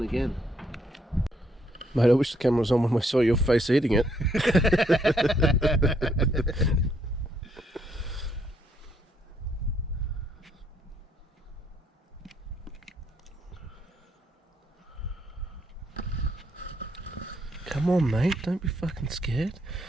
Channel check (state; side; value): normal; both; correlation 0.71